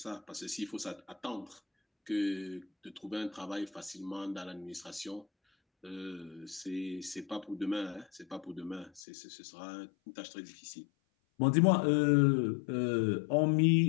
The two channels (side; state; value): right; drops out; at 9.0 s